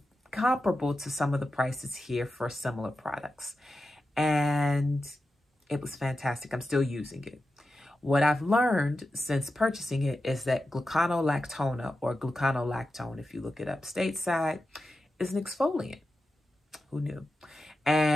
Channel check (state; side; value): normal; both; correlation 0.91